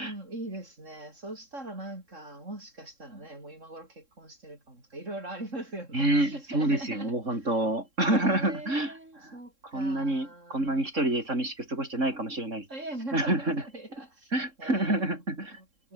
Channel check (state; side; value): late; left; 3.7 ms